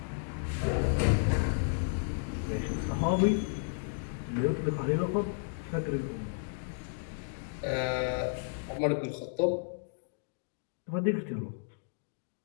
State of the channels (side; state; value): right; silent; digital silence